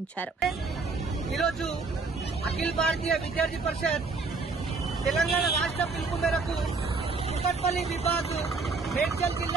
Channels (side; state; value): left; quieter; 4.1 dB